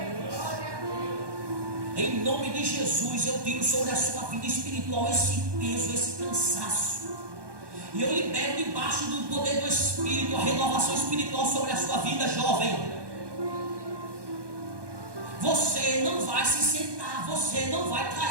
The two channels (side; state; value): left; late; 1.2 ms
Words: Em nome de Jesus, eu tiro sobre a sua vida espiritual esse peso, esse cansaço. E eu libero debaixo do poder do Espírito a renovação espiritual sobre a sua vida, jovem. Você não vai se sentar, você não vai